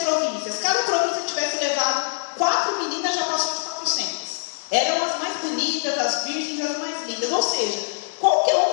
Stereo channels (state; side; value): silent; right; digital silence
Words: províncias. Cada província tivesse levado 4 meninas, já passou de 400. Eram as mais bonitas, as virgens, as mais lindas. Ou seja, qualquer